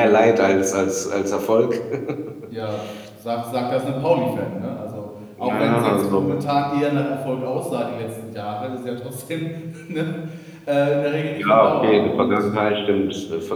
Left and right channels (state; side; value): identical; both; correlation 1.00